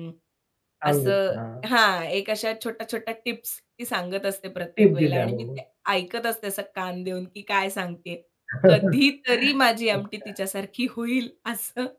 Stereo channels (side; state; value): both; identical; correlation 1.00